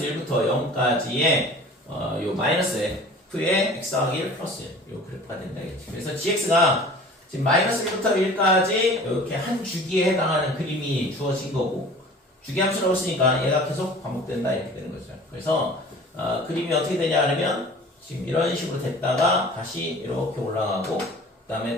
1부터 0까지의 요 마이너스 f의 x 더하기 1 플러스 1 요 그래프가 된다 이거지. 그래서 gx가 지금 마이너스 1부터 1까지 이렇게 한 주기에 해당하는 그림이 주어진 거고 주기함수라고 쓰니까 얘가 계속 반복된다 이렇게 되는 거죠. 그래서 그림이 어떻게 되냐 하면 지금 이런 식으로 됐다가 다시 이렇게 올라가고 그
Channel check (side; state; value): both; normal; correlation 0.44